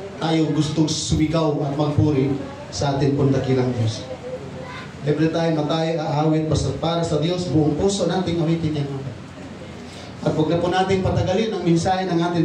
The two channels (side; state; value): both; identical; correlation 1.00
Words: tayo gustong sumigaw at magpuri sa atin pong dakilang Diyos. Every time na tayo aawit para sa Diyos, buong puso nating awitin yan. At huwag na po natin patagalin ang mensahe ng